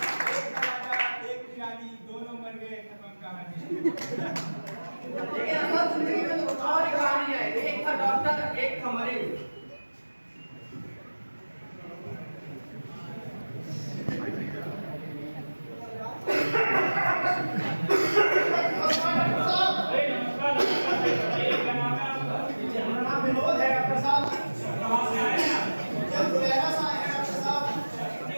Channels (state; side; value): inverted; both; correlation -1.00